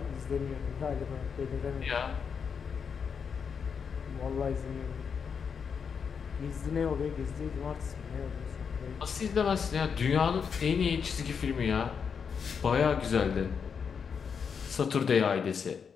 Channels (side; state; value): right; quieter; 6.4 dB